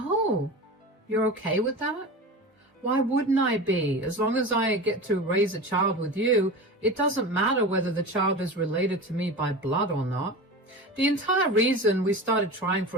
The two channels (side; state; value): both; normal; correlation 0.29